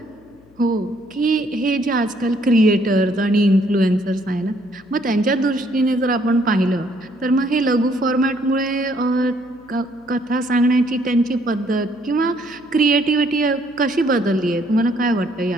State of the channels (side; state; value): left; noise; hum, 30 dB below the sound